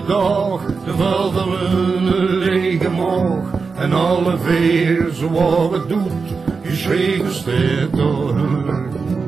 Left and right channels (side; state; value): left; quieter; 4.8 dB